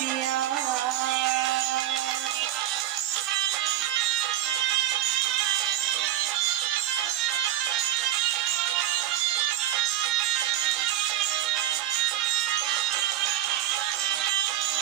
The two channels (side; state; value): left; quieter; 12.8 dB